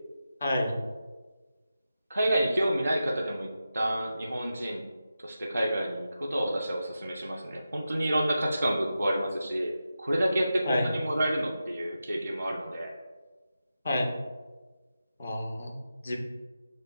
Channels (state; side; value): inverted; both; correlation -0.91